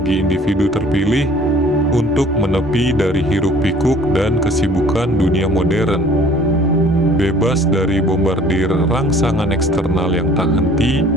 individu terpilih untuk menepi dari hiruk-pikuk dan kesibukan dunia modern. Bebas dari bombardir rangsangan eksternal yang tak henti,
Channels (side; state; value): both; normal; correlation 0.52